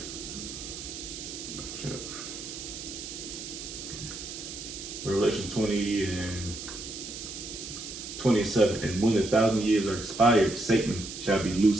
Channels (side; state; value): right; noise; hiss, 9 dB below the sound